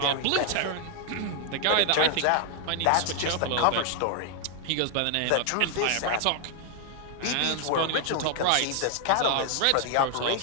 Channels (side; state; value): both; different; correlation 0.00